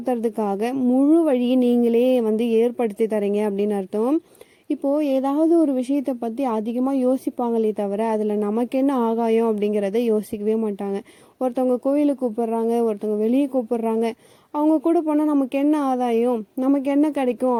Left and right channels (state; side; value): identical; both; correlation 1.00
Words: முழு வழியை நீங்களே ஏற்படுத்தி தரீங்க அப்படின்னு அர்த்தம். இப்போது ஏதாவது ஒரு விஷயத்தை பற்றி அதிகமாக யோசிப்பாங்களே தவிர அதில் நமக்கு என்ன ஆகாயம் அப்படிங்கிறத யோசிக்கவே மாட்டாங்க. ஒருத்தவங்க கோயிலுக்கு கூப்பிட்றாங்க, ஒருத்தவங்க வெளியே கூப்பிட்றாங்க, அவங்க கூட போனால் நமக்கு என்ன ஆதாயம், நமக்கு என்ன